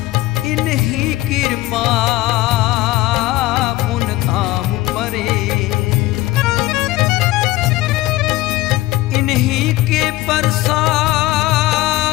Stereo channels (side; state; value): right; quieter; 17.7 dB